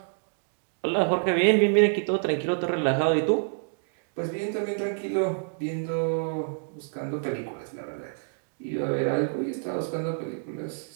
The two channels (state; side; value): silent; left; digital silence